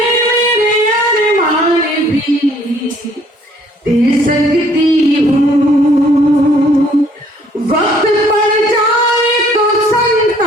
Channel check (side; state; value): both; normal; correlation 0.61